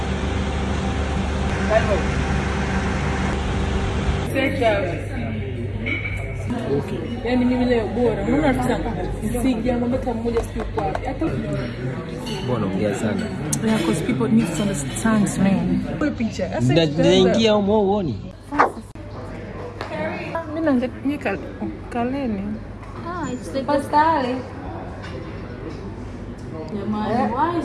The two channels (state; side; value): identical; both; correlation 1.00